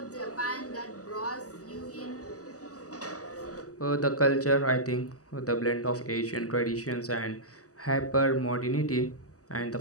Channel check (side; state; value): right; late; 0.66 ms